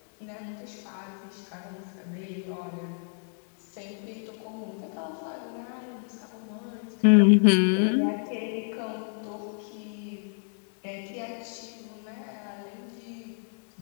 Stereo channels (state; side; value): silent; right; 56 dB below the other